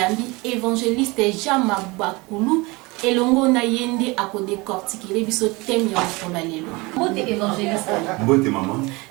évangéliste Jean Mabakulu et longo na yende a ko décortiquer biso thème ya kola lelo. Mbote évangéliste. Mbote maman.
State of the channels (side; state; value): left; quieter; 24.5 dB